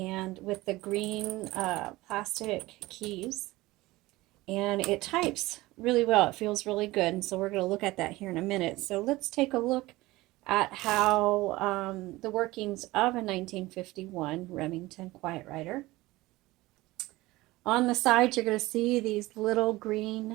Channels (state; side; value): quieter; left; 19.3 dB